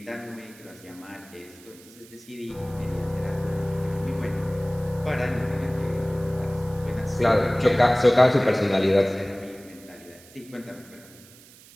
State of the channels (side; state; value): right; noise; hiss, 23 dB below the sound